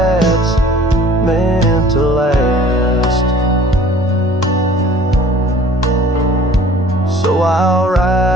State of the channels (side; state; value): both; normal; correlation 0.50